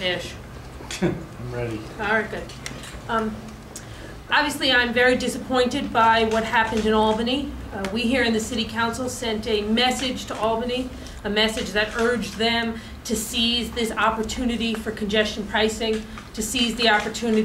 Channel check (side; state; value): both; identical; correlation 1.00